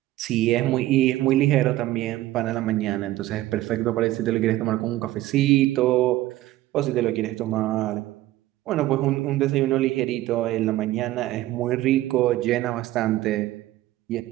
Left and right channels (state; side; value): quieter; left; 15.7 dB